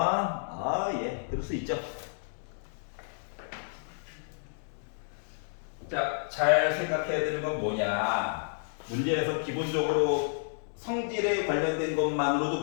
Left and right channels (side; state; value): right; silent; digital silence